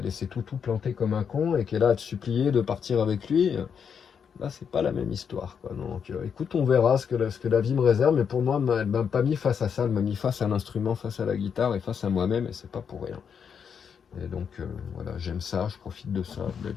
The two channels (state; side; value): quieter; right; 7.0 dB